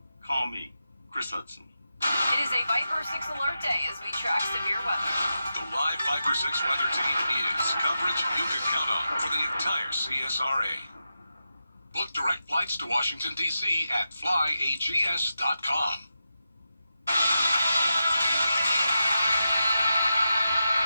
call me, Chris Hudson. It is a Viper 6 alert day as we track severe weather. The live Viper 6 weather team is coverage you can count on for the entire CSRA. Book direct flights to Washington, D.C. at flyags.com.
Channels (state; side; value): inverted; both; correlation -0.89